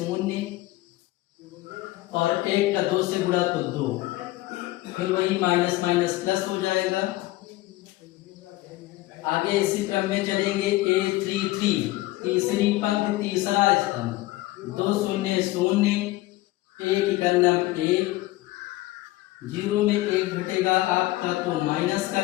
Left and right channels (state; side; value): quieter; right; 18.0 dB